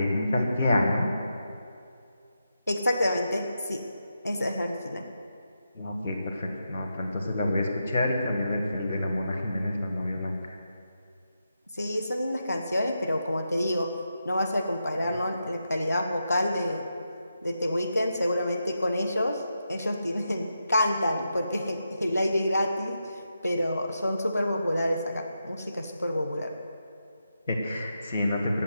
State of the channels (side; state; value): both; inverted; correlation -0.86